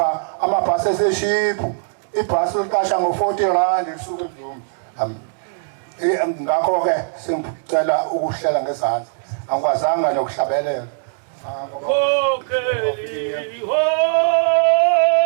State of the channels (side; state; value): left; silent; digital silence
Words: amabhasi eseshiphu ibhasi liqasha ngo40 rand isuke emzumbe ngakho ke sengicela ukuhlela ngezandla angikwazanga nokuhlabelela Kokeli ho